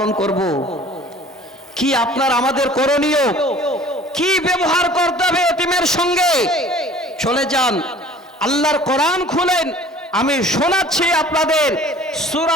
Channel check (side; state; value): both; normal; correlation 0.48